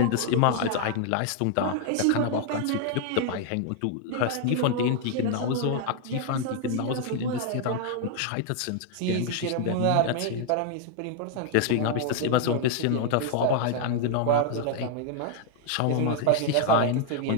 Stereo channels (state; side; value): different; both; correlation 0.00